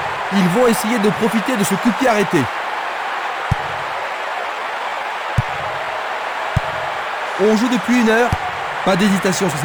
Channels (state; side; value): identical; both; correlation 1.00